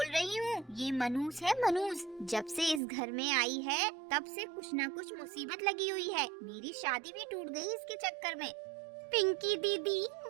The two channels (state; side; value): drops out; left; at 2.8 s